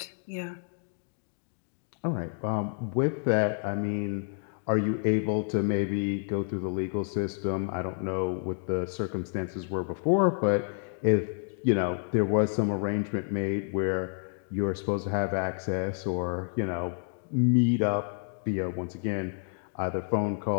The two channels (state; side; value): silent; right; 58 dB below the other